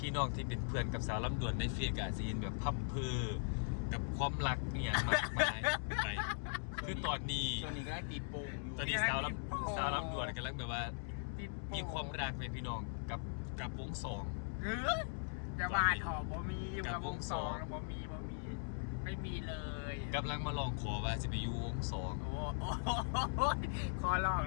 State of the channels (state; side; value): silent; right; digital silence